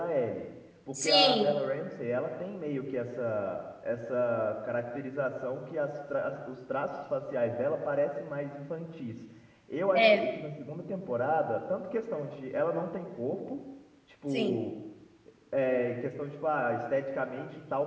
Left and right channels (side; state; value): both; identical; correlation 1.00